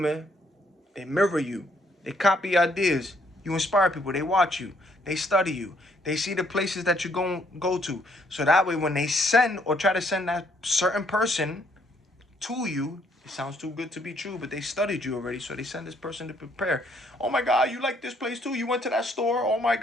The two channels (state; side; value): normal; both; correlation 0.68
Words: They mirror you. They copy ideas. You inspire people. They watch you. They study you. They see the places that you go to. So that way, when they send or try to send that certain person to you, it sounds too good to be true, but they studied you already, so they send this person to prepare. Oh my God, you like this place too? You went to that store? Oh my